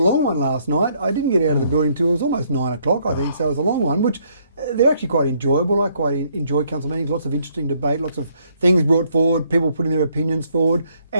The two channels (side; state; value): both; inverted; correlation -0.68